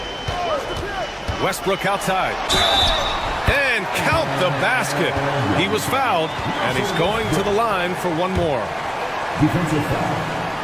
Westbrook outside. And count the basket. He was fouled, and he's going to the line for one more. Defensive foul.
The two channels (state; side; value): identical; both; correlation 1.00